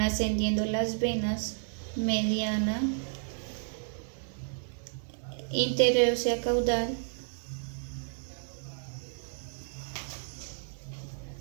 las venas mediana, interósea caudal,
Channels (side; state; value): left; silent; digital silence